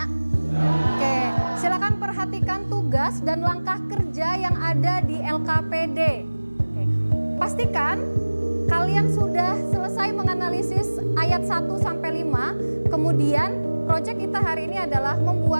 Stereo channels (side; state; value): both; inverted; correlation -1.00